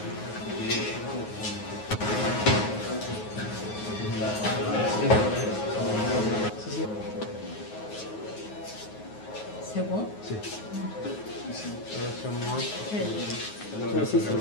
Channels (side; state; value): right; late; 9.4 ms